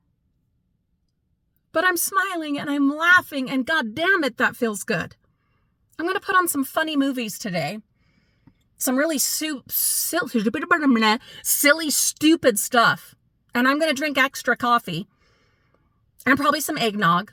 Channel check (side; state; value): both; identical; correlation 1.00